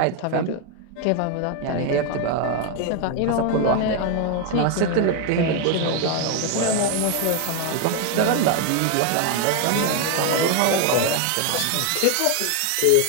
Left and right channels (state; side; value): different; both; correlation 0.01